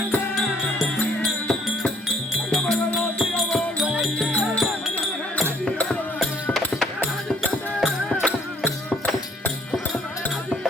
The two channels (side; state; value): both; normal; correlation 0.62